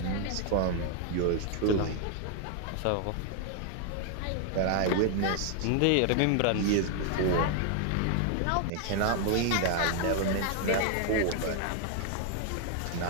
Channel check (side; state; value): both; different; correlation 0.00